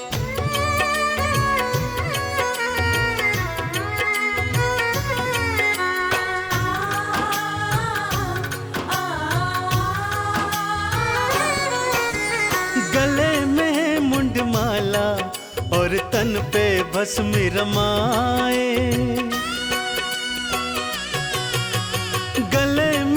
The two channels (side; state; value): both; identical; correlation 1.00